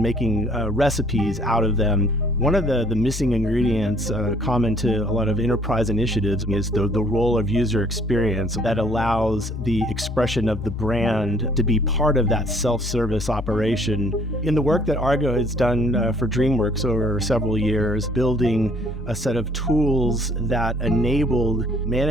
making recipes out of them. One of the missing ingredients common to a lot of enterprise initiatives is the role of user experience that allows the expression of the brand to be part of that self-service operation. In the work that Argo has done for DreamWorks over several years, building a set of tools that enabled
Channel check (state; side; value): normal; both; correlation 0.60